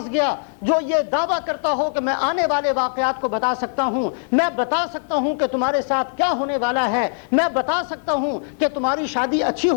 گیا جو یہ دعویٰ کرتا ہو کہ میں آنے والے واقعات کو بتا سکتا ہوں، میں بتا سکتا ہوں کہ تمہارے ساتھ کیا ہونے والا ہے، میں بتا سکتا ہوں کہ تمہاری شادی اچھی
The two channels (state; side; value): silent; right; 65 dB below the other